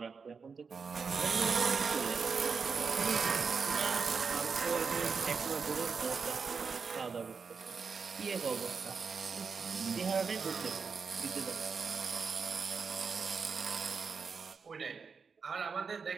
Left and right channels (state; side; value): quieter; left; 5.4 dB